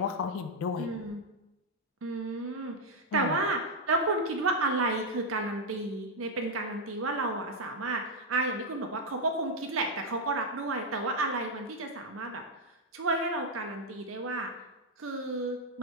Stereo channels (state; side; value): normal; both; correlation 0.00